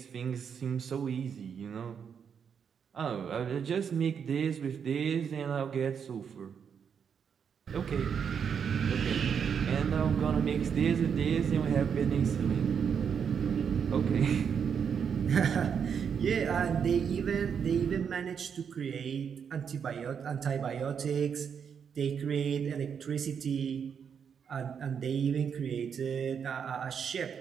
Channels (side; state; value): left; quieter; 7.2 dB